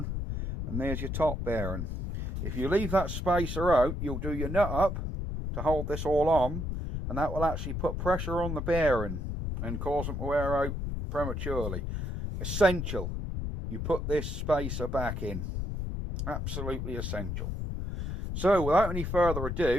and there's your top bearing. If you leave that spacer out, you'll do your nut up to hold this all on, and that will actually put pressure on the bearing and cause them to wear out prematurely. Essential, you put this spacer back in. Absolutely essential. So without any further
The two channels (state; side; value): noise; left; rumble, 3 dB below the sound